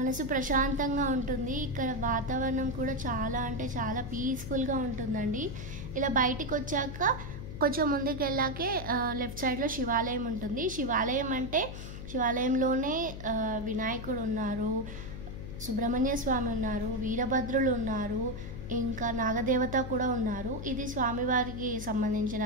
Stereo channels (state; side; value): noise; left; hum, 9 dB below the sound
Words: ప్రశాంతంగా ఉంటుంది. ఇక్కడ వాతావరణం కూడా చాలా అంటే చాలా పీస్ఫుల్గా ఉంటుందండి. ఇలా బయటికి వచ్చాక కొంచెం ముందుకు వెళ్ళాకే లెఫ్ట్ సైడ్లో శివాలయం ఉంటుంది. శివాలయం అంటే శివాలయంలోనే వినాయకుడు ఉన్నారు, సుబ్రహ్మణ్య స్వామి ఉన్నారు, వీరభద్రులు ఉన్నారు, ఇంకా నాగదేవత కూడా ఉన్నారు. ఇది స్వామివారికి సంబంధించిన